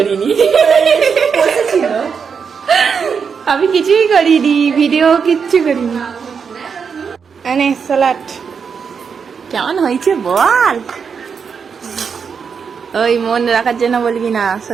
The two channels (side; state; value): left; quieter; 6.2 dB